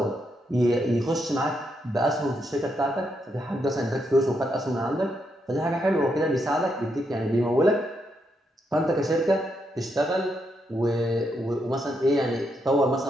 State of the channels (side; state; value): both; normal; correlation 0.80